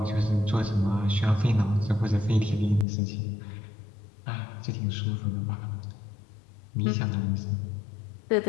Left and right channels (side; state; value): right; drops out; at 2.9 s